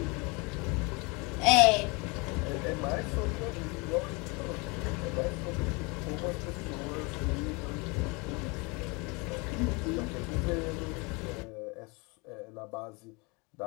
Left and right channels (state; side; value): quieter; right; 28.4 dB